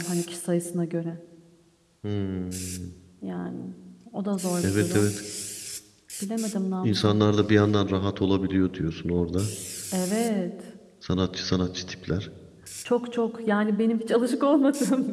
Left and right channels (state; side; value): identical; both; correlation 1.00